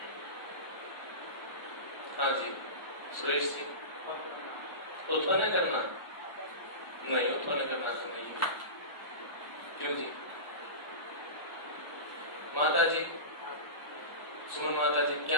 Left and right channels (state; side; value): late; right; 1.3 ms